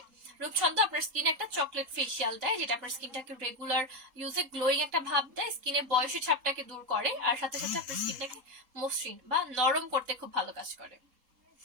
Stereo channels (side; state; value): left; late; 3.8 ms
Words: রূপছন্দ আপনার স্কিনে একটা চকলেট ফেসিয়াল দেয়, যেটা আপনার স্কিনটাকে রেগুলার ইউজে গ্লোয়িং একটা ভাব দেয়, স্কিনে বয়সী ছাপটাকে দূর করে, আর সাথে সাথে আপনার স্কিনটাকে মসৃণ বা নরম করতে খুব ভালো কাজ করে।